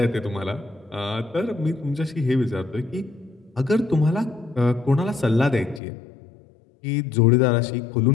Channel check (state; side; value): drops out; right; at 5.8 s